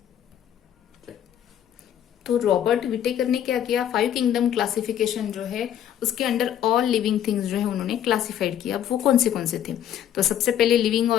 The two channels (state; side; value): quieter; right; 10.4 dB